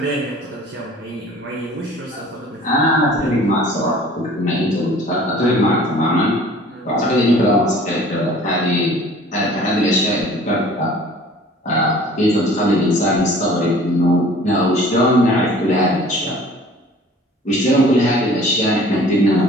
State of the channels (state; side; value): normal; both; correlation 0.49